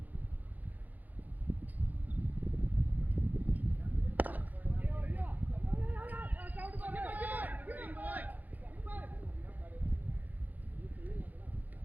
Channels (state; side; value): late; left; 0.082 ms